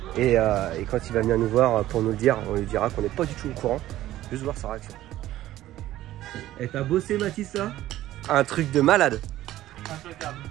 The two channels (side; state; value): left; quieter; 14.4 dB